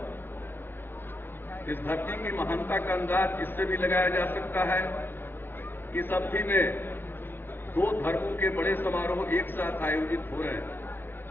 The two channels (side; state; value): right; late; 0.10 ms